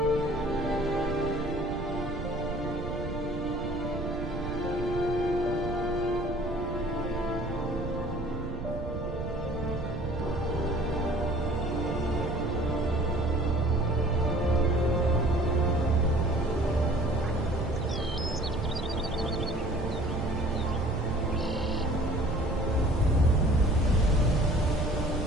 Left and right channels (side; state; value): right; noise; rumble, 6 dB below the sound